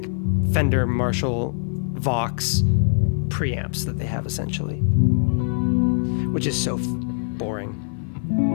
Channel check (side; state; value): right; silent; 64 dB below the other